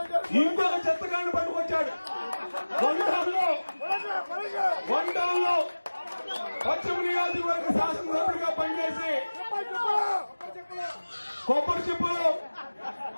ఇంకొక చెత్తగాడిని పట్టుకొచ్చాడు. వన్ టౌన్ లో పశ్చిమ నియోజకవర్గ శాసనసభ్యుడిగా పనిచేసి కొబ్బరి చిప్పులు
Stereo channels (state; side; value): inverted; both; correlation -1.00